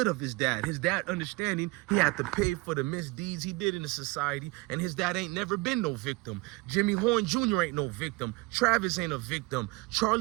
of his dad. His dad understanding he had to pay for the misdeeds he did in the society, and his dad ain't never been no victim. Jimmy Horn Jr. ain't no victim. Travis ain't a victim.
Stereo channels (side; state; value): left; quieter; 23.9 dB